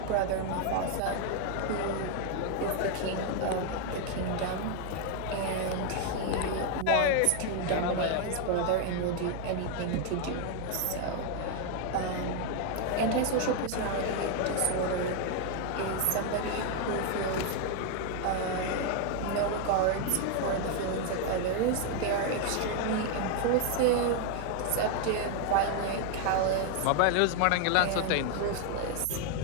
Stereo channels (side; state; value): both; different; correlation 0.00